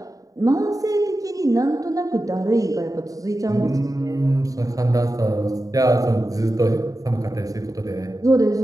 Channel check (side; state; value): left; late; 0.17 ms